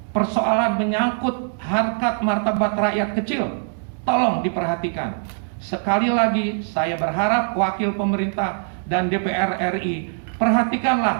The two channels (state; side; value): silent; left; digital silence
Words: persoalan menyangkut harkat martabat rakyat kecil. Tolong diperhatikan. Sekali lagi saya berharap wakil pemerintah dan DPR RI,